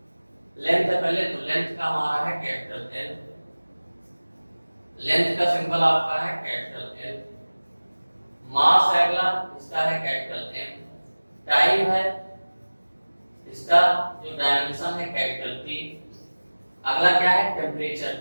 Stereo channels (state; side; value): inverted; both; correlation -1.00